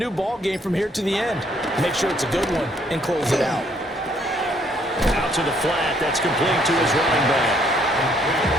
ball game from here to the end. Make sure it's a good one and close it out. Out to the flat. That's complete to his running back.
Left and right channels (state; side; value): normal; both; correlation 0.67